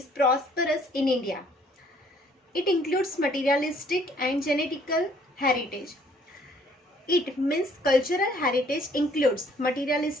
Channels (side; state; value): both; normal; correlation 0.61